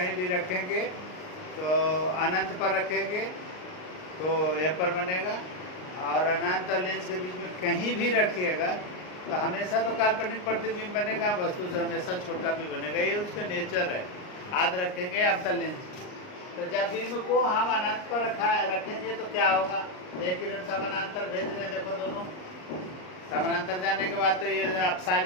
भी रखेंगे तो अनंत पर रखेंगे तो यह पर बनेगा, और अनंत और लेंस के बीच में कहीं भी रखिएगा तो हमेशा तो काल्पनिक प्रतिबिंब बनेगा, वस्तु से हमेशा छोटा भी बनेगा। ये उसका नेचर है। याद रखेंगे अवतल लेंस। तो जब बिंब को हम अनंत पर रखेंगे तो क्या होगा, एक किरण समानांतर भेज रहे हैं, देखो दोनों समानांतर जाने के बाद तो ये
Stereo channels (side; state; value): right; late; 38 ms